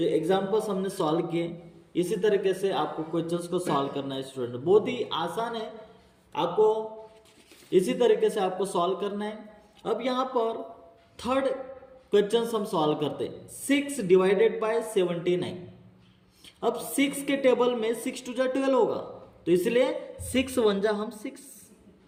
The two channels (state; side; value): identical; both; correlation 1.00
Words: एग्जाम्पल्स हमने सॉल्व किए। इसी तरीके से आपको क्वेश्चंस को सॉल्व करना है स्टूडेंट, बहुत ही आसान है, आपको इसी तरीके से आपको सॉल्व करना है। अब यहाँ पर थर्ड क्वेश्चंस हम सॉल्व करते हैं। 6 डिवाइडेड बाय 79। अब 6 के टेबल में 6 2 जा 12 होगा, तो इसलिए 6 1 जा हम